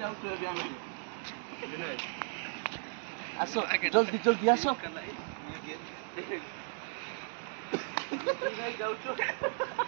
आस जल्दी जल्दी आस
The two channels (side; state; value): left; silent; 54 dB below the other